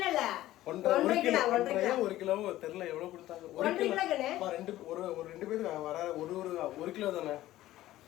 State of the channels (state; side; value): quieter; right; 15.1 dB